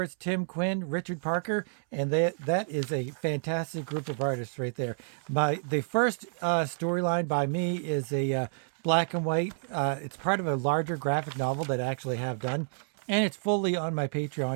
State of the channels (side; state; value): left; silent; 58 dB below the other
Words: Tim Quinn, Richard Parker, and that is a fantastic group of artists right there. The first storyline by me is a black and white. It's part of a larger graphic novel that I actually have done, and it's fully on my